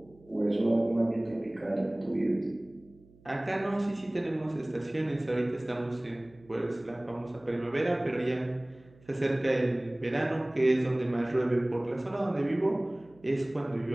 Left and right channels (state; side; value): noise; right; hum, 27 dB below the sound